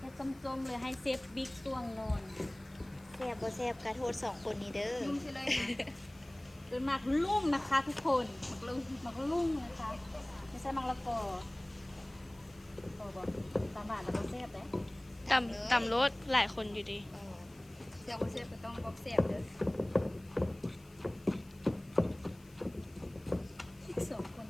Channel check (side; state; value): left; noise; hiss, 27 dB below the sound